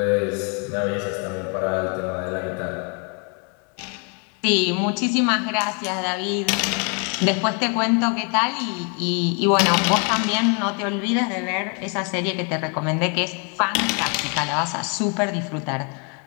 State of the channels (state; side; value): quieter; right; 36.7 dB